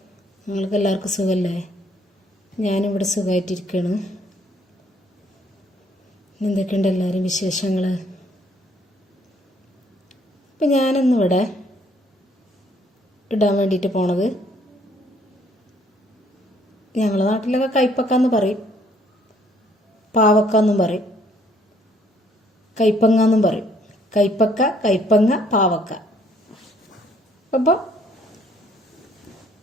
നിങ്ങൾക്ക് എല്ലാവർക്കും സുഖമല്ലേ? ഞാനിവിടെ സുഖമായിട്ടിരിക്കുകയാണ്. എന്തൊക്കെയുണ്ട് എല്ലാവരും വിശേഷങ്ങൾ? ഇപ്പം ഞാനിന്നിവിടെ ഇടാൻ വേണ്ടിയിട്ട് പോണത്, ഞങ്ങളുടെ നാട്ടിലൊക്കെ കൈപ്പക്കാന്ന് പറയും, പാവക്കാന്നും പറയും, കൈപ്പങ്ങാന്നും പറയും. കൈപ്പക്ക, കൈപ്പങ്ങ, പാവക്ക. അപ്പോൾ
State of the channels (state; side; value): normal; both; correlation 0.64